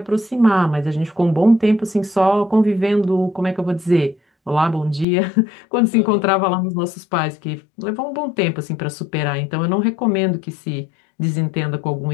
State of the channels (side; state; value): right; drops out; at 5.1 s